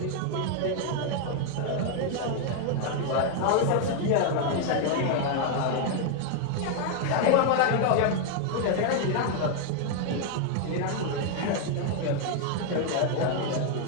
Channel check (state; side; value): different; both; correlation 0.00